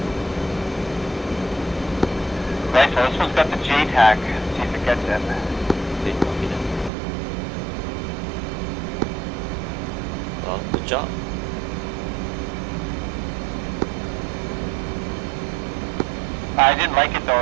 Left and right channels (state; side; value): drops out; left; at 6.9 s